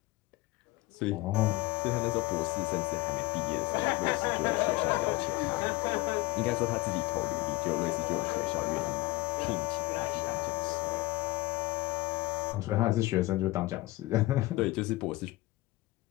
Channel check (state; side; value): quieter; right; 20.0 dB